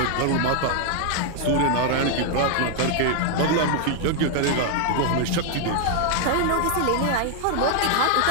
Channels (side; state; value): both; different; correlation 0.00